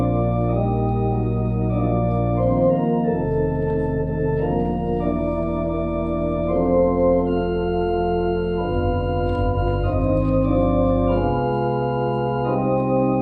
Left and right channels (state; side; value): identical; both; correlation 1.00